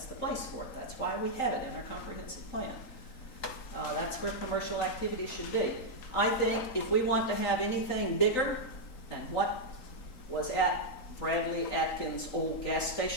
the place for it. That's why we have it in our comprehensive plan. That's where commercial activity should be. I think if we want to have anything bigger than what was at Bradley Atkins' old gas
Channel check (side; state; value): right; late; 3.8 ms